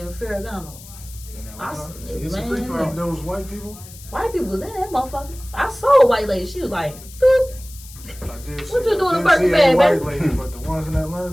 Ferragamo? It's a free for all. Those white people? White people was in that motherfucker. I saw a white lady. She was like, boop. What you doing in Birkin bag, white baby? lady, but the ones in Atlanta,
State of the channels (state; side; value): noise; left; hiss, 18 dB below the sound